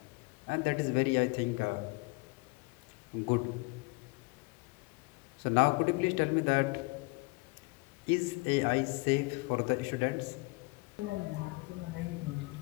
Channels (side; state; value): right; quieter; 26.5 dB